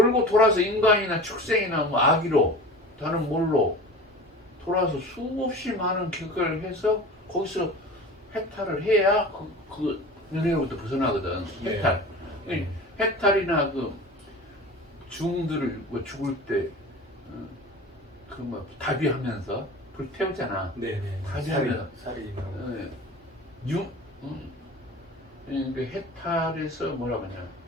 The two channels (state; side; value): normal; both; correlation 0.36